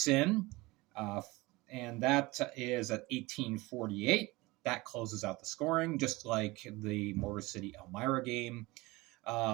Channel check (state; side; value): quieter; left; 21.9 dB